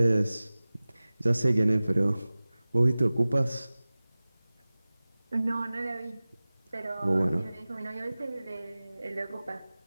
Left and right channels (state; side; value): inverted; both; correlation -0.98